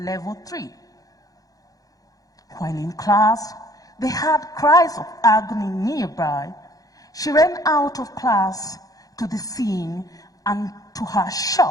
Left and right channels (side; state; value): right; late; 0.17 ms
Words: level 3. While in class, they heard cries of agony nearby. She ran out of class to the scene, and to her